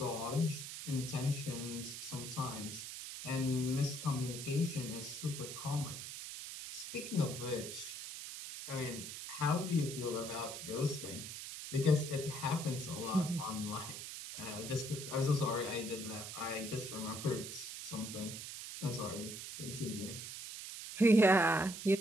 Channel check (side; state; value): right; noise; hiss, 8 dB below the sound